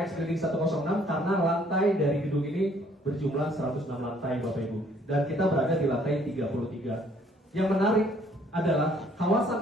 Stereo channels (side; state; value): both; normal; correlation 0.62